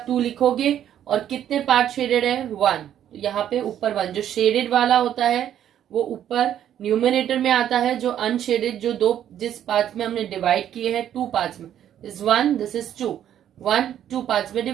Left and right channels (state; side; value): quieter; left; 10.5 dB